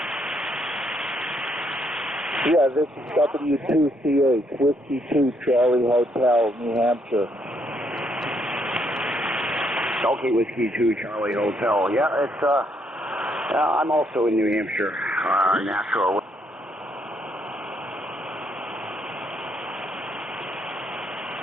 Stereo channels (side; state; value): both; normal; correlation 0.73